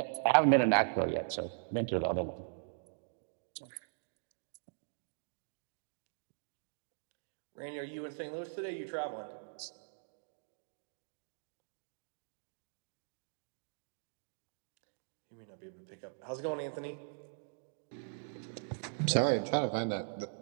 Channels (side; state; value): left; silent; digital silence